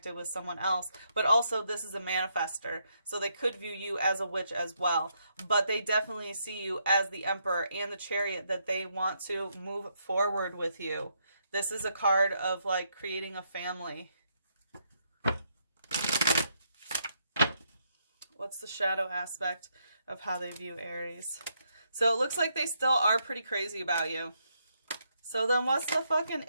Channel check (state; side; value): inverted; both; correlation -0.77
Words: with someone else. But also, this is a manifester, so they could view you as a witch as well. But they definitely see you as the Emperor and the Chariot, that they want to move forward with you. This is a card of like creating a family. What's the shadow aspect of how they view Aries? So it looks like they still are pretty crazy about you. So then what's the fucking